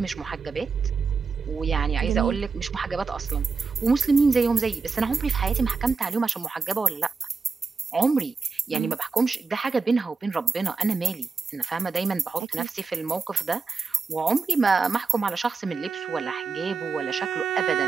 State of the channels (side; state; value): left; quieter; 4.7 dB